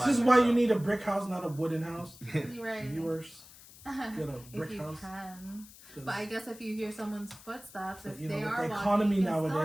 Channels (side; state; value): left; noise; hiss, 20 dB below the sound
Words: by is why you myself. need a brick house, not a wooden house. You're right. Viewers, get a If brick you house. can. 'Cause But I guess if you hear someone's footsteps, But, if you know, they with are the walking, economy you can still